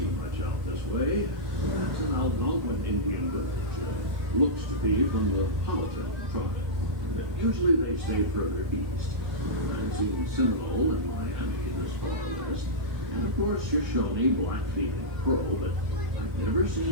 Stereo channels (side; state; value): left; late; 1.7 ms